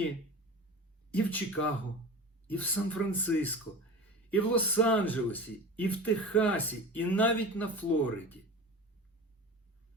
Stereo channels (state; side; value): normal; both; correlation 0.32